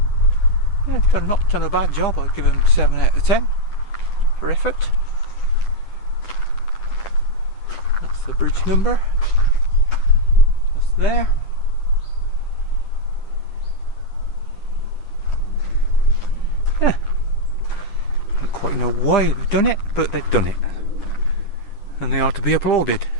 Yeah, not done a bad job. I'd give them 7 out of 10 for effort. That's the bridge number. Just there. Yeah. Don't quite know why they've done it, but they've done it. And they are to be applauded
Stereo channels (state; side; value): late; right; 9.9 ms